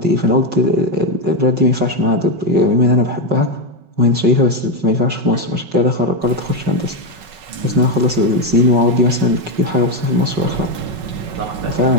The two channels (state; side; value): late; left; 5.3 ms